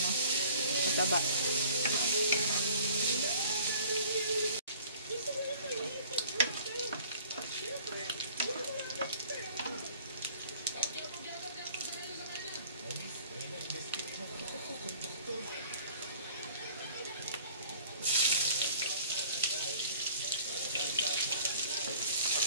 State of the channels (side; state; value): both; inverted; correlation -0.52